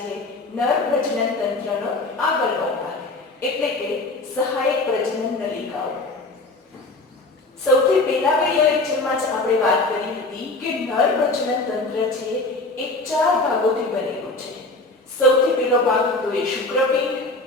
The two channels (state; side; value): quieter; right; 3.0 dB